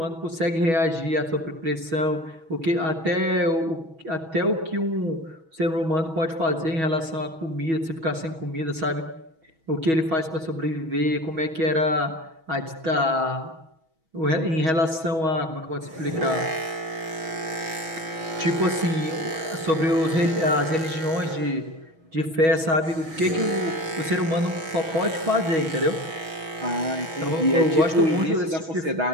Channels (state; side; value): late; left; 6.2 ms